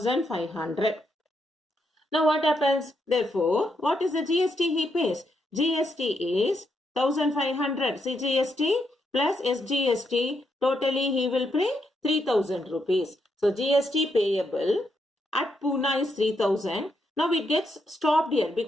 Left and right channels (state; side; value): normal; both; correlation 0.79